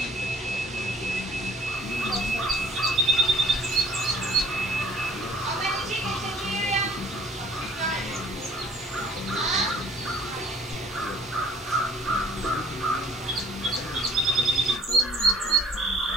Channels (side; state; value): both; normal; correlation 0.54